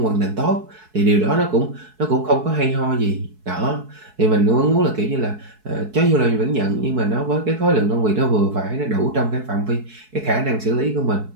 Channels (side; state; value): left; late; 4.6 ms